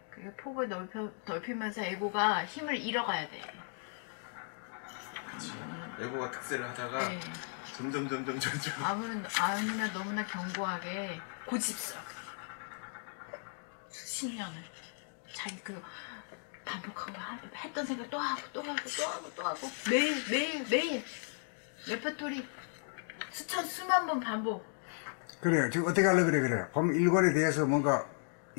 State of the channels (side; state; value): right; silent; 54 dB below the other